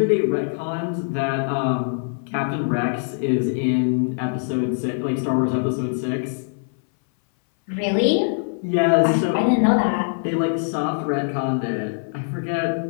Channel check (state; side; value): silent; right; 60 dB below the other